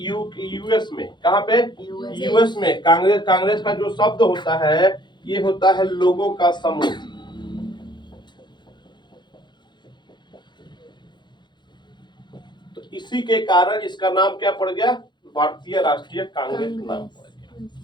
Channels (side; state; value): right; late; 0.22 ms